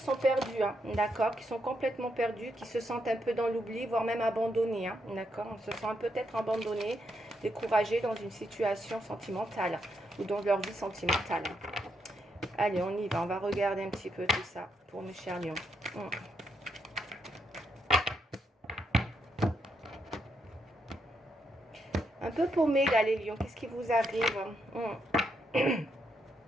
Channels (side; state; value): both; normal; correlation 0.80